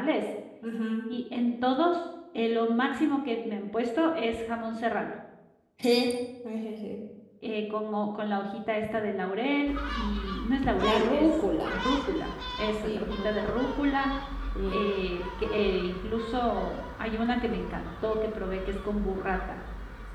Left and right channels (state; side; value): identical; both; correlation 1.00